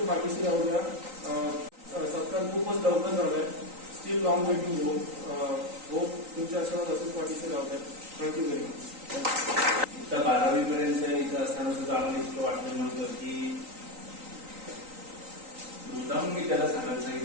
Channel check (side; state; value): left; late; 3.9 ms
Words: पाठीशी राहू द्या. सत्कार खूपच लवकर झालाय. Still long way to go. Hope तुमचे आशीर्वाद असेच पाठीशी राहू द्या. Thank you very much. इथं 12वी पर्यंत इथं असताना सुद्धा आम्हाला इतकं वाटलं नव्हतं की मुद्दाम मी त्याला सांगायला